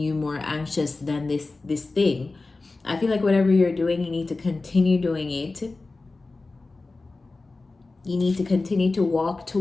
more anxious than this thing. I feel like whatever you're doing, you need to continue doing it. You need to continue to walk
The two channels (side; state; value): right; quieter; 3.5 dB